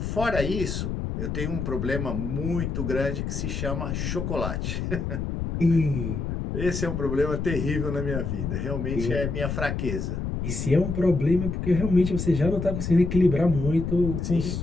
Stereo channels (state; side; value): noise; left; rumble, 3 dB below the sound